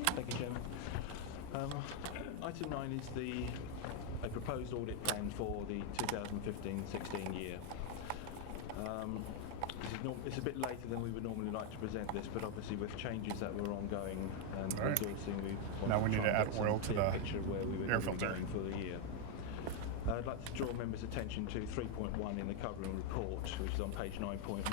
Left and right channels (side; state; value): both; different; correlation 0.01